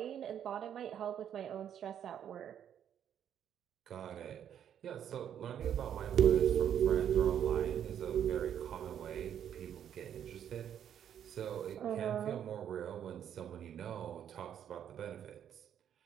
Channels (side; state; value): left; quieter; 9.5 dB